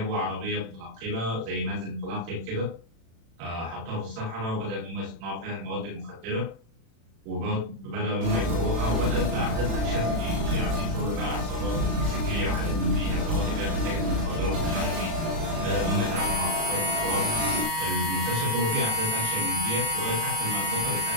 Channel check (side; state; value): left; late; 36 ms